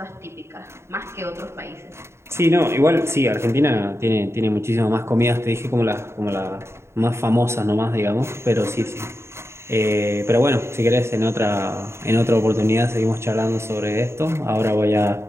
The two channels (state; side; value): late; left; 0.13 ms